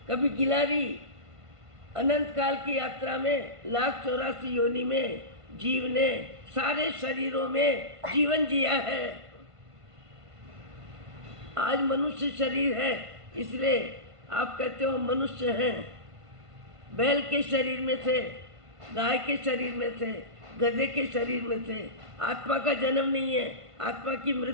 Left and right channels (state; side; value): late; left; 1.5 ms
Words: कभी गिलारी। अनंत काल की यात्रा में 1,84 योनि में जीव ने सारे शरीरों में जीवन जिया है। आज मनुष्य शरीर है, इसलिए आप कहते हो मनुष्य हैं। बैल के शरीर में थे, गाय के शरीर में थे, गधे के शरीर में थे। आत्मा का जन्म नहीं है, आत्मा की